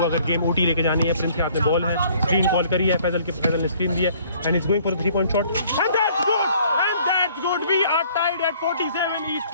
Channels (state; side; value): inverted; both; correlation -0.58